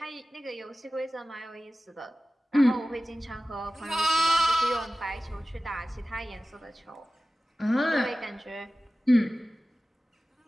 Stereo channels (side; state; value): both; normal; correlation 0.96